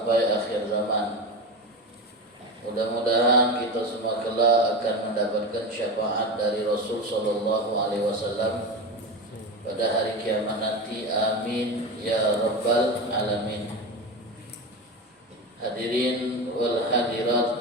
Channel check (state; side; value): normal; both; correlation 0.22